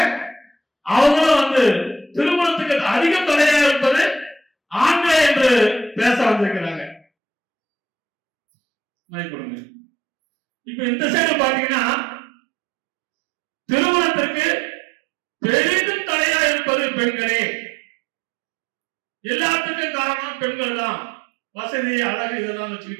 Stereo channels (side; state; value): left; drops out; at 7.0 s